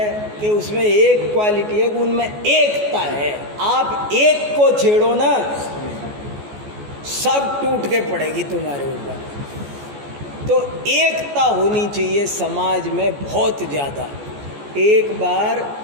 कि उसमें एक क्वालिटी है कि उनमें एकता है। आप एक को छेड़ो ना, सब टूट के पड़ेगी तुम्हारे ऊपर। तो एकता होनी चाहिए समाज में बहुत ज़्यादा। एक बार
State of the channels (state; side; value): late; left; 14 ms